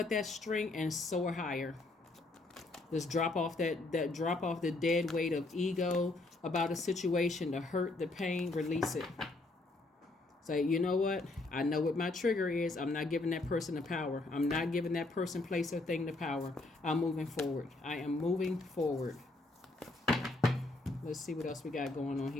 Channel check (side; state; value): right; quieter; 3.0 dB